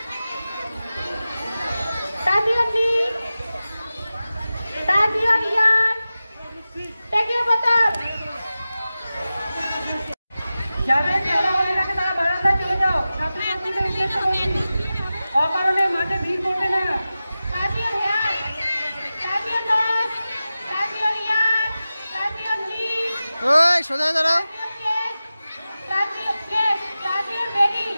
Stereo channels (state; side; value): inverted; both; correlation -0.95